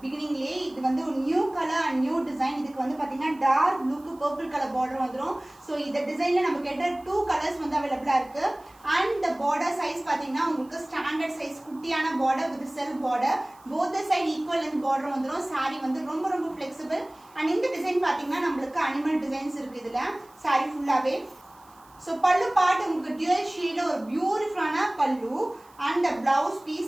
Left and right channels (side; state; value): right; noise; hiss, 29 dB below the sound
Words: beginningலயே. இது வந்து ஒரு new colour and new design. இதுக்கு வந்து பாத்தீங்கன்னா டார்க் ப்ளூக்கு பர்பிள் கலர் border வந்துரும். சோ இந்த டிசைன்ல நமக்கு கேட்ட 2 கலர்ஸ் வந்து அவேலபிளா இருக்கு. and the border size பாத்தீங்கன்னா உங்களுக்கு ஸ்டாண்டர்ட் சைஸ் குட்டியான border with self border. both the side equal length border வந்துரும். saree வந்து ரொம்ப flexible. and இந்த டிசைன் பாத்தீங்கன்னா நமக்கு அனிமல் டிசைன்ஸ் இருக்கு இதுல saree ஃபுல்லாவே. So pallu part உங்களுக்கு dual shade ஒரு பியூட்டிஃபுல்லான pallu and the blouse